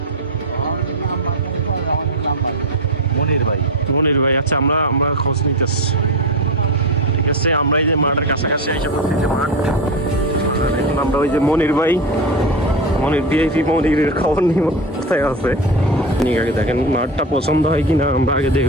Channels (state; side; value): normal; both; correlation 0.18